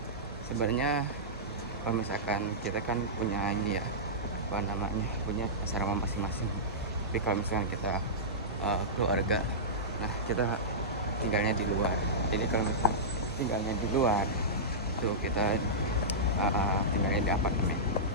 Sebenarnya kalau misalkan kita kan punya ini ya, apa namanya, punya asrama masing-masing. Tapi kalau misalkan kita keluarga, nah kita tinggalnya di luar. Jadi kalau misalkan tinggalnya di luar, itu kita tinggalnya di apartemen.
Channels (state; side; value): normal; both; correlation -0.15